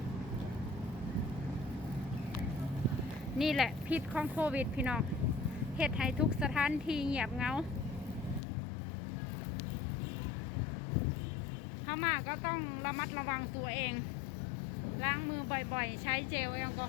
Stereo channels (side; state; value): right; drops out; at 8.4 s